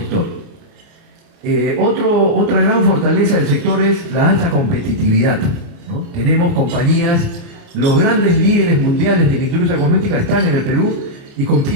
Otra gran fortaleza del sector es la alta competitividad, ¿no? Tenemos compañías, los grandes líderes mundiales de la industria cosmética están en el Perú y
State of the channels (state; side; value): late; left; 29 ms